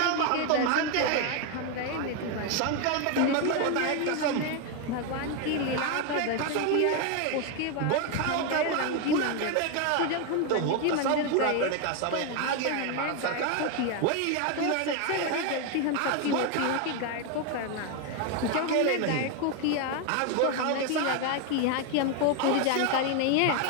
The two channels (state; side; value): different; both; correlation 0.01